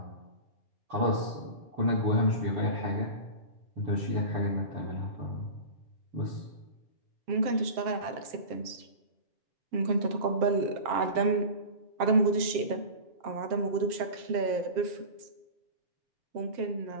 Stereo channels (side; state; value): left; late; 7.5 ms